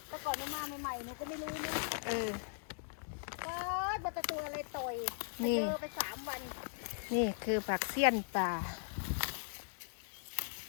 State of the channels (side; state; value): right; silent; digital silence